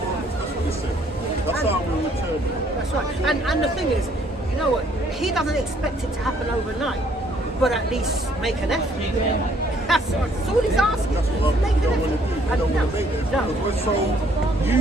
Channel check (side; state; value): both; normal; correlation 0.64